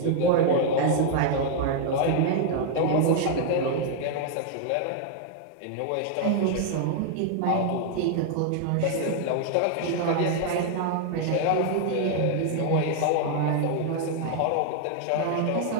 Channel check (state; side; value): different; both; correlation 0.00